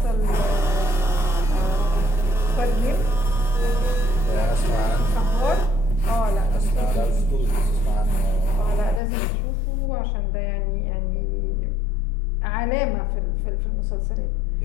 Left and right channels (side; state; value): right; drops out; at 9.0 s